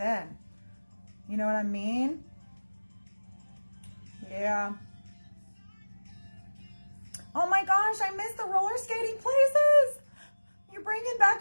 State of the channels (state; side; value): inverted; both; correlation -1.00